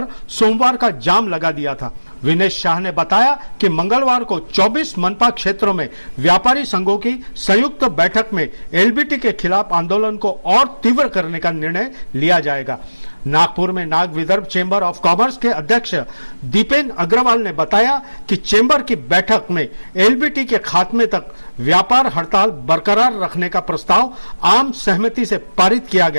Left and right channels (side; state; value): both; inverted; correlation -1.00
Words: सोमवार का जाम लगा दिया था। विनेश शाह ने बताया कि मंगलवार को 24 मनपा क्षेत्रों में व्यापारी संघों की संयुक्त बैठक में एलबीटी के खिलाफ आंदोलन को और तीव्र करने का निर्णय लिया जाएगा। नागपुर में Nag Vidarbha chamber of commerce के अध्यक्ष दीपेन अग्रवाल ने बताया कि चेंबर की बैठक में एलबीटी के खात्मे तक व्यापार हड़ताल बरकरार रखने का प्रस्ताव आम सहमति से पारित किया